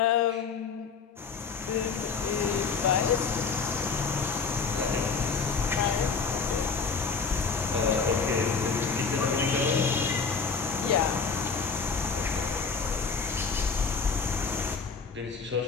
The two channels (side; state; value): right; quieter; 5.3 dB